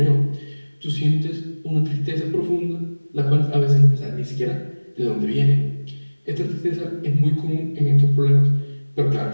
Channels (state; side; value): inverted; both; correlation -1.00